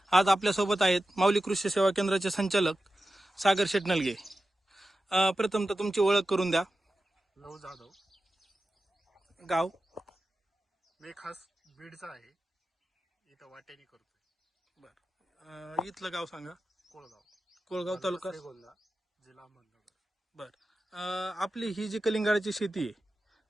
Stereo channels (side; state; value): both; normal; correlation 0.93